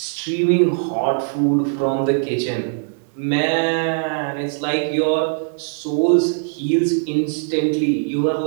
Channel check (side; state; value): left; silent; digital silence